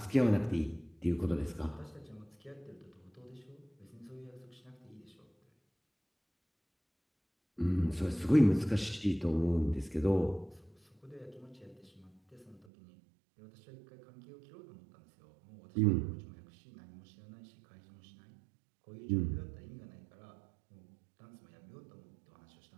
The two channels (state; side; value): drops out; left; at 12.7 s